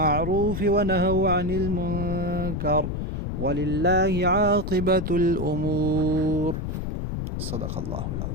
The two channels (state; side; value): noise; left; rumble, 3 dB below the sound